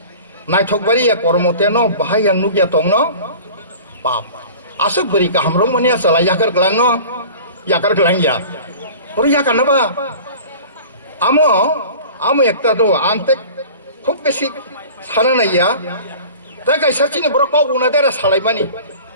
नायथकबारिया कर्मतेनो बाहाय आं नुगिया दं न बाप आसक बोरि गाहाम रं माने आसला याकर ग्लांगिया बोरै याकानबा आमो एकता दो आंते खुब बेसि साना नाया दा गायसाचिनि बर कगुना देरा सालायमानि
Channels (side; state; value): both; inverted; correlation -0.41